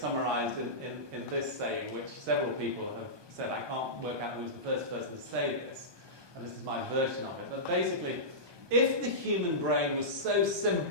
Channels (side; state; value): left; late; 1.2 ms